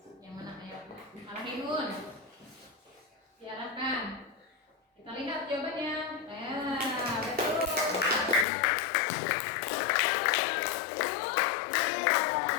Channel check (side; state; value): right; drops out; at 8.5 s